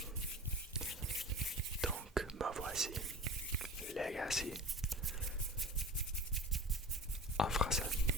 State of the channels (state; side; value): normal; both; correlation 0.35